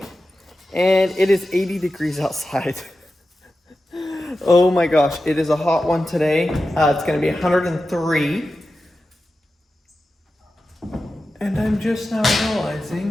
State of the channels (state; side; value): normal; both; correlation 0.92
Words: and it is 80 degrees outside. Oh my gosh, it is a hot one today. It's going to be 103. And I'm just now